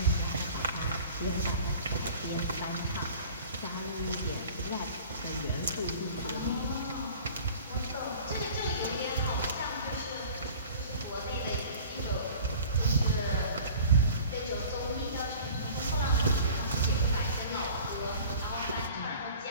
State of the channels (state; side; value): inverted; both; correlation -0.45